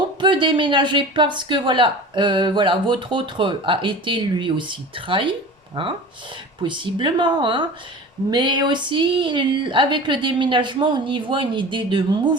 peut déménager parce que voilà, voilà, votre autre a été lui aussi trahi, hein, possiblement, hein, mais aussi avec le déménagement, on y voit une idée de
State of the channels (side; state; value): both; normal; correlation 0.36